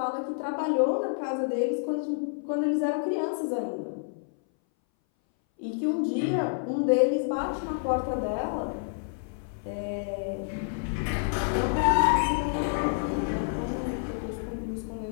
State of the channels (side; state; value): right; silent; 59 dB below the other